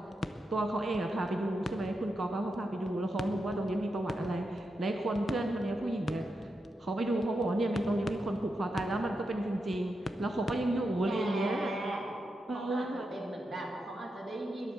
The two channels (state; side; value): normal; both; correlation 0.86